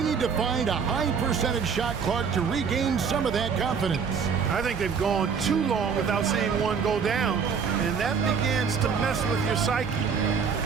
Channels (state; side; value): quieter; left; 6.2 dB